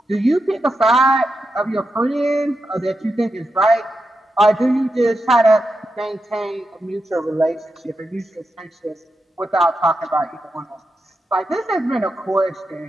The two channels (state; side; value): normal; both; correlation 0.88